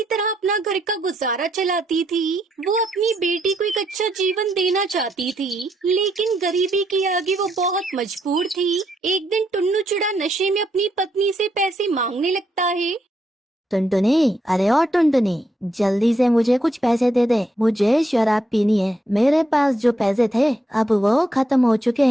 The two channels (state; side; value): normal; both; correlation 0.78